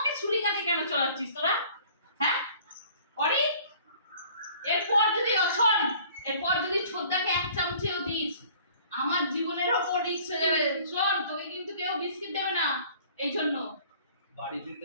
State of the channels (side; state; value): both; inverted; correlation -0.52